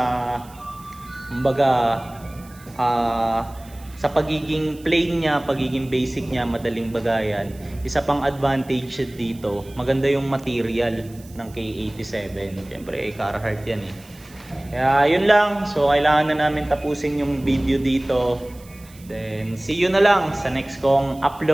kumbaga, sa pagiging plain niya, pagiging basic niya, madaling bagayan, isa pang advantage dito, maganda yung material ng K87. Siyempre, Carhartt yan eh. Kaya yun lang. So, kailangan na namin tapusin yung video dito. Then, see you na lang sa next kong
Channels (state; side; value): noise; right; hiss, 24 dB below the sound